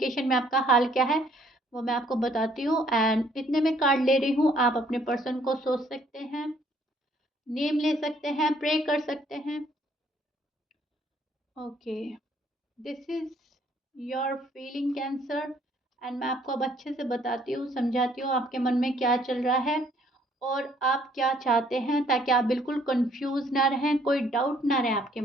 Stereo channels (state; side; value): normal; both; correlation 0.64